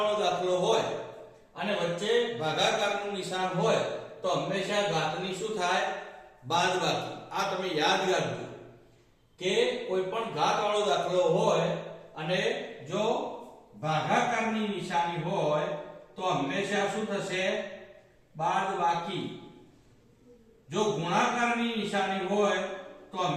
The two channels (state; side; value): identical; both; correlation 1.00